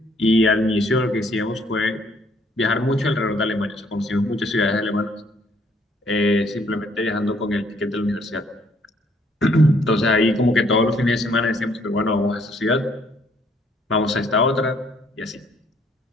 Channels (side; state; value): both; normal; correlation 0.65